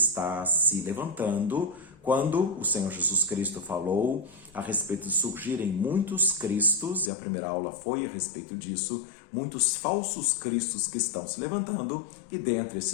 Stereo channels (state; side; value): drops out; right; at 7.1 s